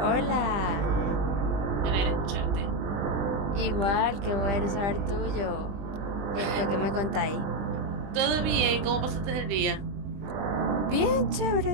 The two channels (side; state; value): left; late; 20 ms